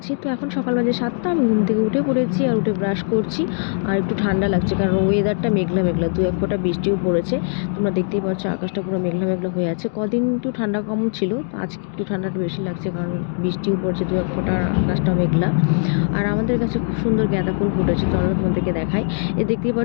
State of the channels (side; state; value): right; silent; digital silence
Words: তো এখন সকাল বাজে 7টা, আমি ঘুম থেকে উঠে পড়েছি আর উঠে ব্রাশ করছি। আর একটু ঠান্ডা লাগছে কারণ ওয়েদারটা মেঘলা মেঘলা, দু এক ফোঁটা বৃষ্টিও পড়েছে। তোমরা দেখতেই পাচ্ছ আকাশটা পুরো মেঘলা মেঘলা হয়ে আছে। কদিন একটু ঠান্ডা কম ছিল, তো আজকে একটু ঠান্ডাটা বেশি লাগছে কারণ বৃষ্টিও পড়ছে দু এক ফোঁটা, আকাশটা মেঘলা। আর আমাদের কাছে খুব সুন্দর গাঁদা ফুল ফুটেছে, চলো তোমাদেরকে দেখাই। দেখতেই